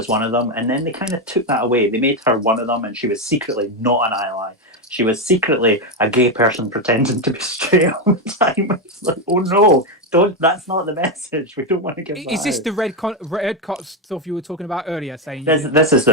one of them, and then they kind of took that away. They made her one of them, and she was secretly not an ally. She was secretly a gay person pretending to be straight all the time. It's like, oh no, that's not the message. We don't want to give that Is this out. the red cot stuff you were talking about earlier? Saying This is the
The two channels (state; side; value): normal; both; correlation 0.07